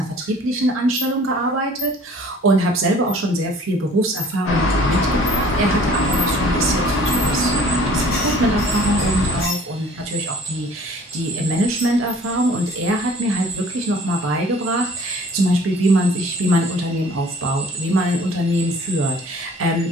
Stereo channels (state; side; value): normal; both; correlation 0.52